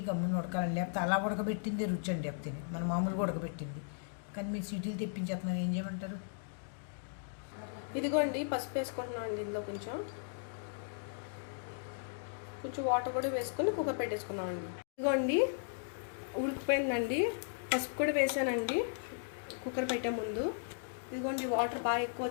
గమ్మున ఉడకాలండి. లేకపోతే అలా ఉడకబెట్టింది రుచి అండి. లేకపోతే మన మామూలుగా ఉడకబెట్టింది, కానీ మీరు సీటీలు తెప్పించేస్తున్నాను, ఏం చేయమంటారు? ఇదిగోండి పసుపు వేసుకుంటున్నాం అండి. ఇందులో కొంచెం వాటర్ కూడా వేసుకొని కుక్కర్ పెట్టేసుకున్నాం అండి. ఇదిగోండి ఉడికిపోయిందండి. పసుపు కూడా వేసానండి కుక్కర్ పెట్టే ముందు. ఇదిగోండి వాటర్ బాగా ఎక్కువ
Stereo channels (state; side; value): silent; right; digital silence